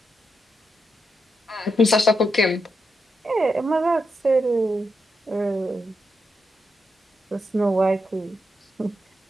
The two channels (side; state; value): both; normal; correlation 0.85